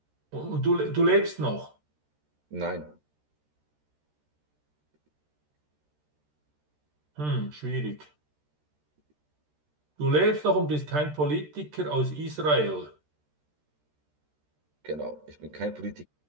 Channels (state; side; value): late; left; 13 ms